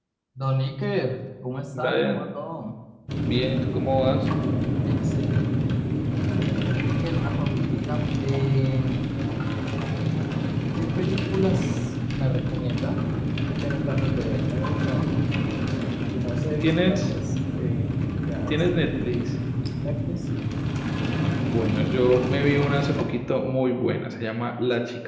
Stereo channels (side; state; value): both; identical; correlation 1.00